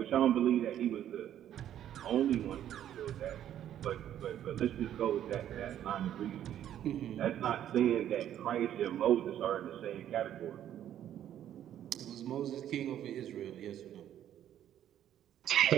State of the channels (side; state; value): left; quieter; 11.0 dB